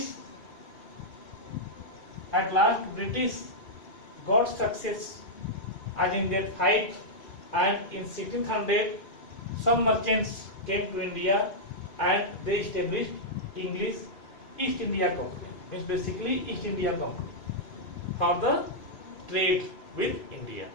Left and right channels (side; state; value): right; late; 2.6 ms